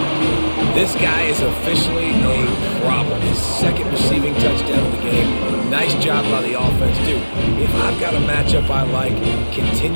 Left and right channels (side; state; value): both; inverted; correlation -1.00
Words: This guy is officially a problem. His second receiving touchdown of the game. Nice job by the offense. Dude, if I've got a matchup I like,